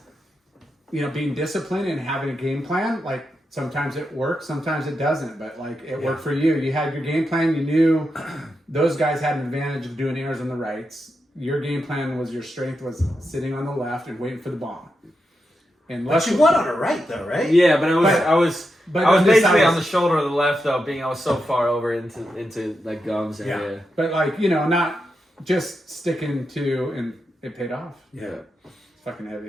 being disciplined and having a game plan. Like sometimes it works, sometimes it doesn't. But like it worked for you. You had your game plan. You knew those guys had an advantage of doing airs on the rights. Your game plan was your strength was sitting on the left and waiting for the bomb. And But you won on the right, though, right? Yeah, but I was on this basically side on the shoulder of the left though, being I was so far over into like gums area. But like not just sticking to, and it paid off. Yeah. It's fucking heavy.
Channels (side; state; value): both; normal; correlation 0.86